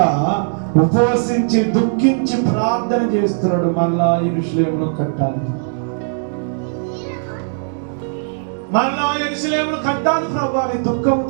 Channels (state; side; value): silent; left; digital silence